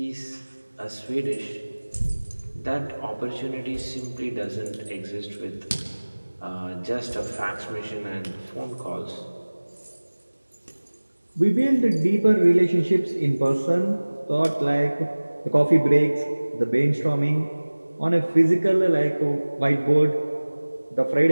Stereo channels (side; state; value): both; inverted; correlation -1.00